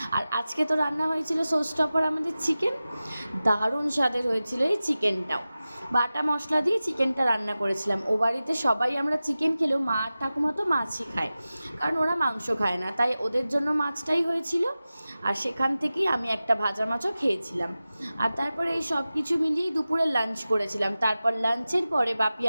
আর আজকে তো রান্না হয়েছিল শোস্টপার আমাদের চিকেন। দারুণ স্বাদের হয়েছিল এই চিকেনটাও। বাটা মশলা দিয়ে চিকেনটা রান্না করেছিলাম। ও বাড়িতে সবাই আমরা চিকেন খেলেও মা আর ঠাকুমা তো মাছই খায়, কারণ ওরা মাংস খায় না, তাই ওদের জন্য মাছটাই হয়েছিল। আর সেখান থেকেই আমি একটা ভাজা মাছও খেয়েছিলাম। আর তারপরে এই সব কিছু মিলিয়েই দুপুরে লাঞ্চ করেছিলাম। তারপর লাঞ্চের পরে বাপি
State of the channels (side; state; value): both; inverted; correlation -0.95